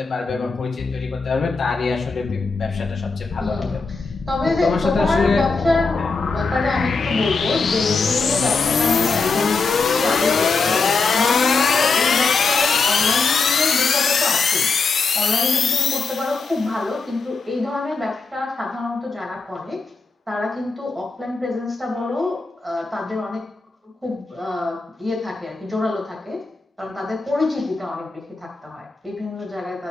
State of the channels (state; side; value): quieter; right; 4.2 dB